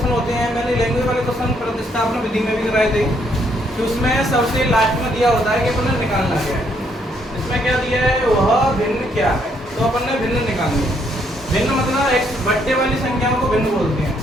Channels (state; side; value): normal; both; correlation 0.71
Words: होते हैं। मैंने लैंग्वेज वाले क्वेश्चन प्रतिस्थापन विधि में भी कराए थे, कि उसमें सबसे लास्ट में दिया होता है कि अपन ने निकालना क्या है। इसमें क्या दिया है, वह भिन्न क्या है, तो अपन ने भिन्न निकालनी है। भिन्न मतलब एक बट्टे वाली संख्याओं को भिन्न बोलते हैं।